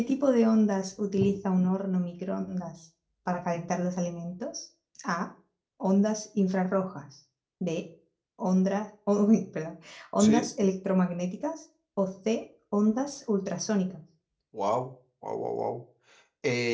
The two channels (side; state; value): both; identical; correlation 1.00